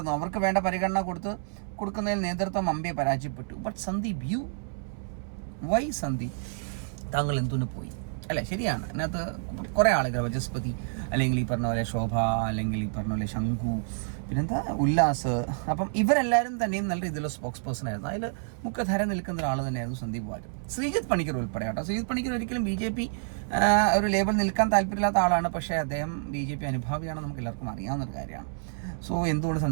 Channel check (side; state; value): left; silent; 59 dB below the other